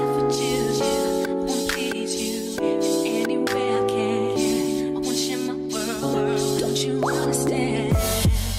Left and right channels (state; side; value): identical; both; correlation 1.00